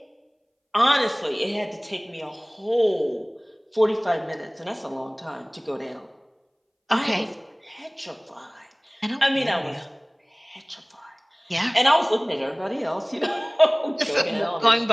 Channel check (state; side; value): identical; both; correlation 1.00